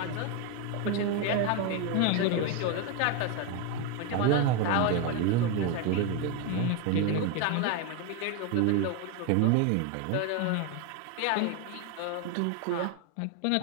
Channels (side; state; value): both; different; correlation 0.02